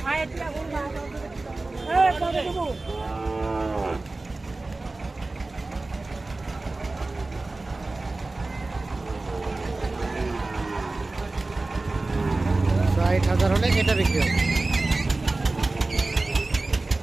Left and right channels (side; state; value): left; quieter; 3.2 dB